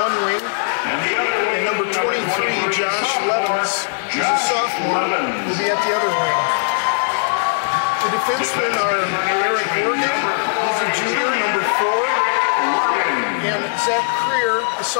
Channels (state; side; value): silent; right; digital silence